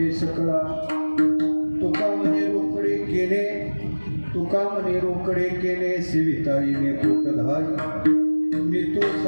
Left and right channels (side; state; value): both; inverted; correlation -1.00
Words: सकळा तुका मने रोकडे केले सेविताईने पोटधाय मी तो